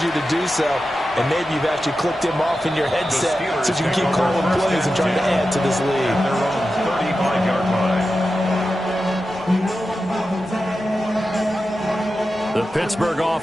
you to do so. And maybe you've actually clicked him off in your headset so you can keep calling plays and trying to add to this lead. Their own 35-yard line. The Pittsburgh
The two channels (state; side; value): normal; both; correlation 0.91